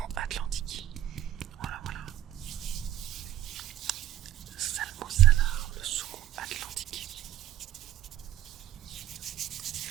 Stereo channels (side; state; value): left; quieter; 12.5 dB